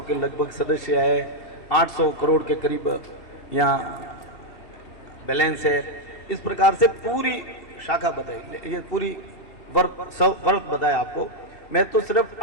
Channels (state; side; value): late; right; 2.7 ms